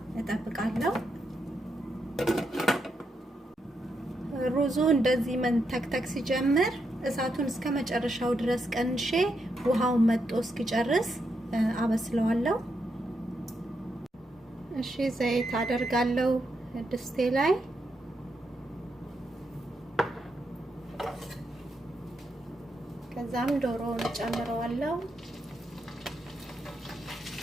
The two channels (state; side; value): normal; both; correlation 0.82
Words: እጠብቃለሁ። ሩዙ እንደዚህ መንተክተክ ሲጀምር እሳቱን እስከ መጨረሻው ድረስ ቀንሼ ውሃውን መጥቶ እስኪጨርስ አበስለዋለሁ። እሺ ዘይት አደርጋለሁ ድስቴ ላይ። ከዛም ዶሮውን ጨምረዋለሁ።